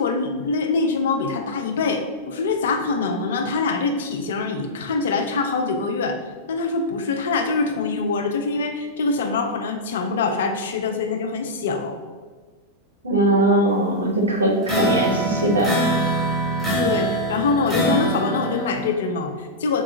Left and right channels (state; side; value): normal; both; correlation -0.13